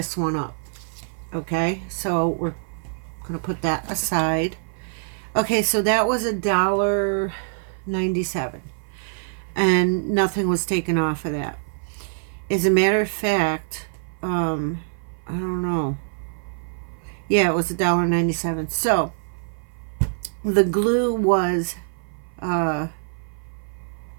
one up. Okay, so we're gonna put that aside. Okay, so that was $1.97, and nothing was taken off of that. As a matter of fact, I don't know. Yeah, it was $1.97. So the glue was, where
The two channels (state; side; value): silent; left; 55 dB below the other